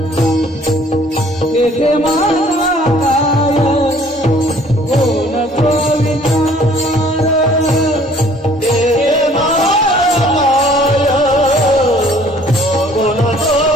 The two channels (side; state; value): both; normal; correlation 0.56